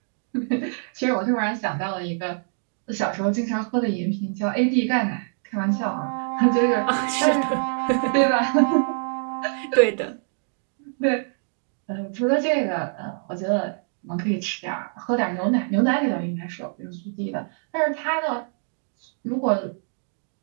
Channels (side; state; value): left; silent; digital silence